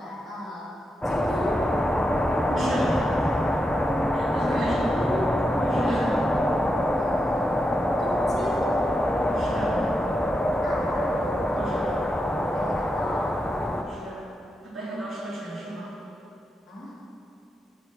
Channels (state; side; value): normal; both; correlation 0.86